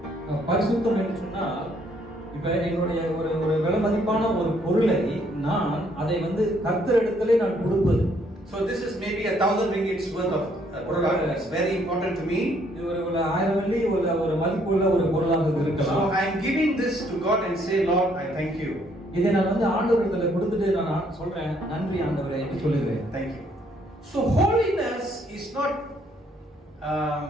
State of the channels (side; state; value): both; normal; correlation 0.67